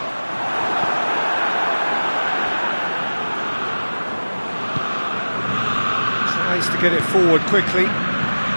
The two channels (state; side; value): inverted; both; correlation -1.00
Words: Tries to get it forward quickly.